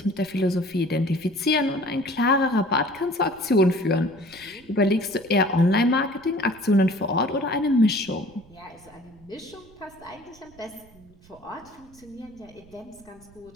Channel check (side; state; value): right; noise; rumble, 26 dB below the sound